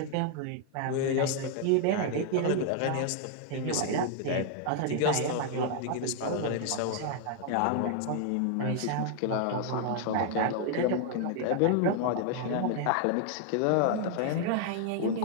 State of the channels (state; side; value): different; both; correlation 0.00